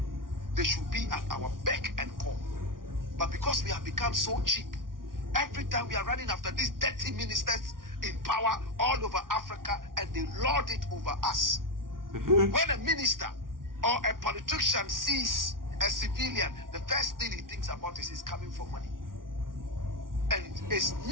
They should be at our beck and call. But because we have become so cheap, every time we are running after these dirty ministers in power all over Africa, and they lord it over us. When a minister or a politician sees a civilian, the first thing he thinks about is he's coming for money. And it's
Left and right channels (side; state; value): left; late; 0.91 ms